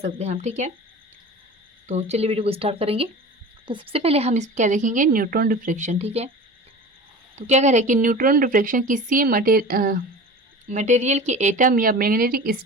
हैं हम, ठीक है। तो चलिए वीडियो को स्टार्ट करेंगे। तो सबसे पहले हम इस क्या देखेंगे, न्यूट्रॉन डिफ्रेक्शन, ठीक है। तो क्या कह रहे हैं कि न्यूट्रॉन डिफ्रेक्शन किसी मटेरियल के एटम या मैग्नेटिक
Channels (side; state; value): both; normal; correlation 0.35